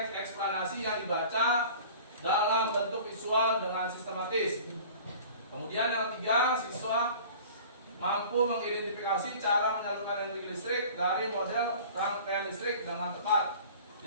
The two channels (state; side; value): inverted; both; correlation -0.44